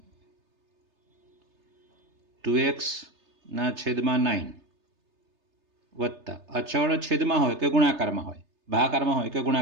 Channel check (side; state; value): left; late; 3.3 ms